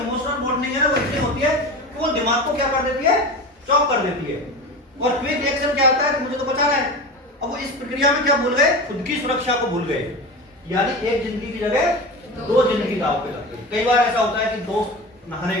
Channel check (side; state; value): both; normal; correlation 0.28